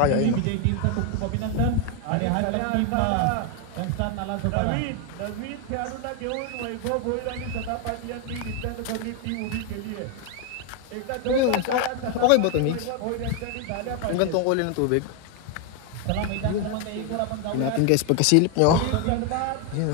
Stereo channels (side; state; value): both; different; correlation 0.01